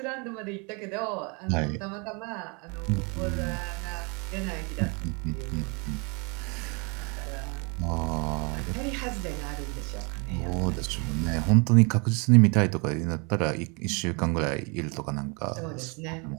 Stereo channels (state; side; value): quieter; left; 31.6 dB